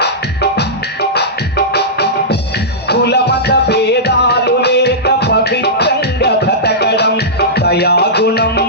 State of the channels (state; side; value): normal; both; correlation -0.14